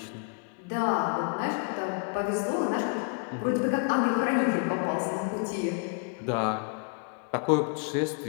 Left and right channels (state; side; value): quieter; right; 39.9 dB